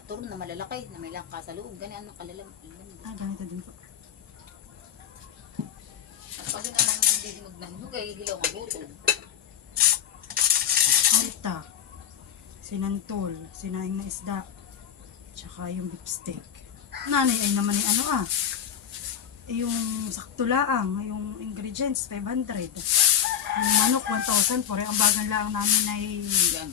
turon na malalaki na may langka sa loob. Ganyan ang kalalam. Ganito din po. At pag yun ang nandidinog ng hugay, hilaw ang butol. Alta, sinantol, sinaing na isda, tsaka yung beef steak. Nanay ay naman yung ano yung sakto laang, yung ingredients, 500. Yung manok, 1,000. Pore, ang bagal lang namin ay Yan.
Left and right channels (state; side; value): quieter; right; 9.2 dB